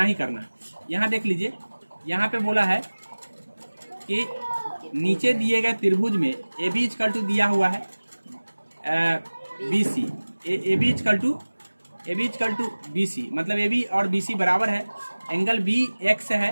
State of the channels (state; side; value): inverted; both; correlation -1.00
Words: ही करना है। यहाँ देख लीजिए, यहाँ पे बोला है कि नीचे दिए गए त्रिभुज में ए बी इक्वल टू दिया हुआ है B C, A B equal to B C, मतलब ए बी और बी सी बराबर है। एंगल बी एक्स